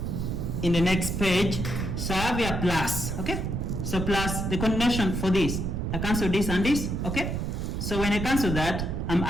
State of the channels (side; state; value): right; noise; rumble, 2 dB below the sound